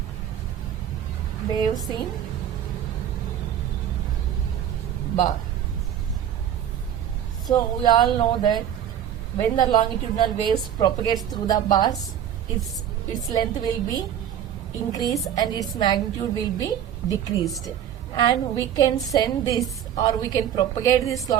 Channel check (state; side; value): quieter; left; 9.9 dB